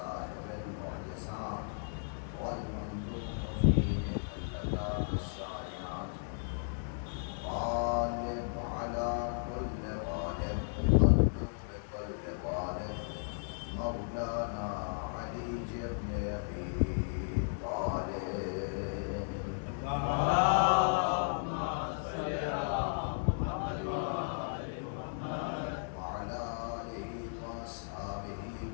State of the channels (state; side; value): silent; right; digital silence